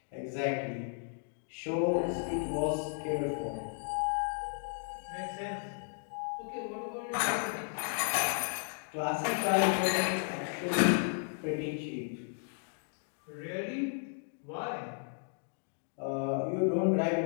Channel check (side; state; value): right; silent; 55 dB below the other